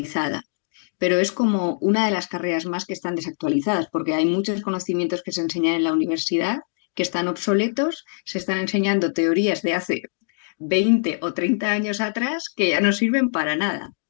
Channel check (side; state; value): right; silent; digital silence